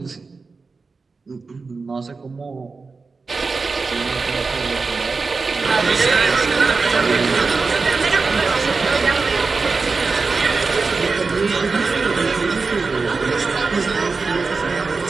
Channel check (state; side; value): quieter; left; 4.3 dB